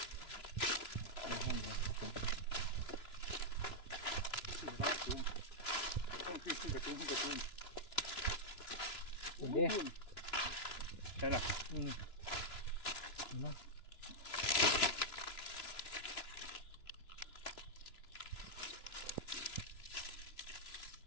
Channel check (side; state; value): right; late; 3.0 ms